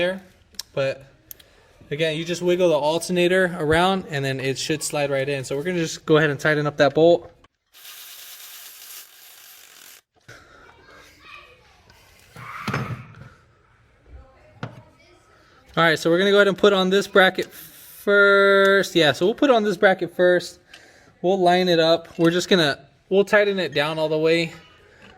But again, you just wiggle the alternator around and then it should slide right in. So we're gonna just go ahead and tighten up that bolt. All right, so we're gonna go ahead and put on this bracket first. Yeah, so we'll put on this bracket first. We'll line it up. We'll tighten it down all the way.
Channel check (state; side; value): identical; both; correlation 1.00